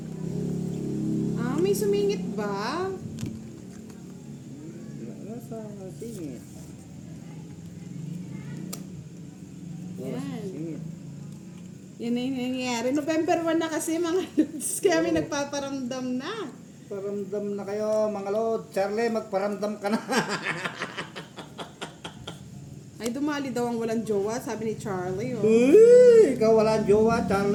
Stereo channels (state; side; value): identical; both; correlation 1.00